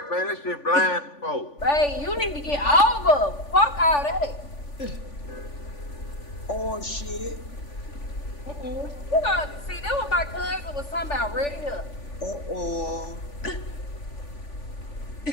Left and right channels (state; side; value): late; right; 3.5 ms